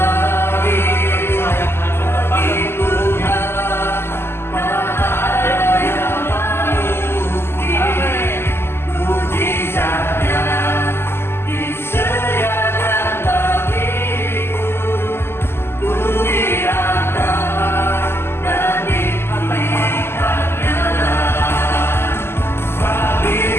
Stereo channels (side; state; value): right; late; 0.12 ms